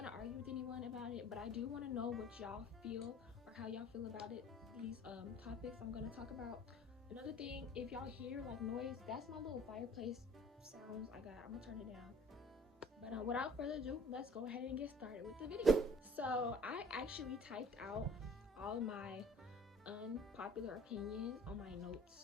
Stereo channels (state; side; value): normal; both; correlation 0.51